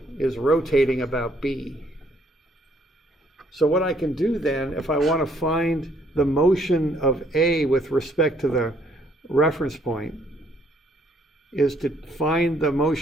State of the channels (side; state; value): both; normal; correlation 0.66